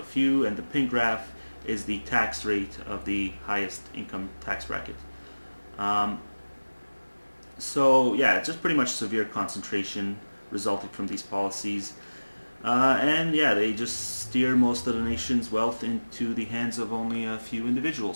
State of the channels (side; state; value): both; inverted; correlation -1.00